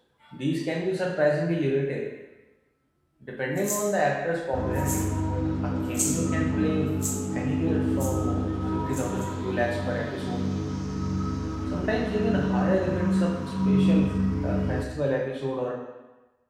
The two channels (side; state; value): both; identical; correlation 1.00